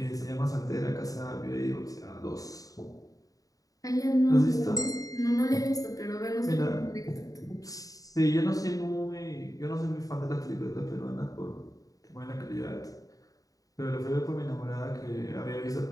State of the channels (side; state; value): right; late; 0.17 ms